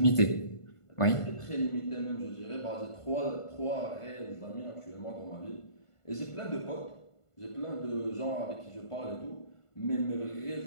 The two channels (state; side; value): late; right; 1.5 ms